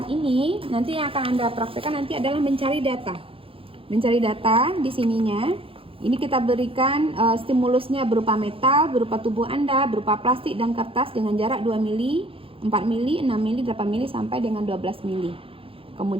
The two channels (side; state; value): left; late; 0.27 ms